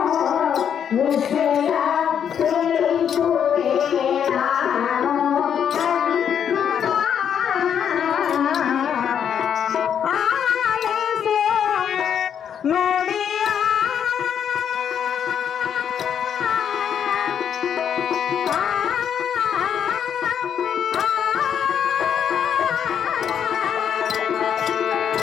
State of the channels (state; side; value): quieter; right; 8.4 dB